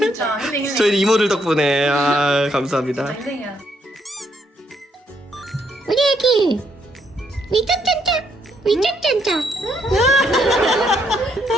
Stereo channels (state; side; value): normal; both; correlation 0.73